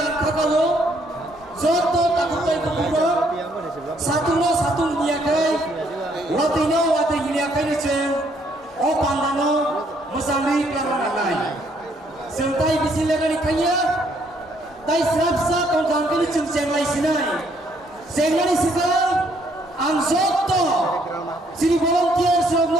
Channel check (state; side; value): normal; both; correlation 0.68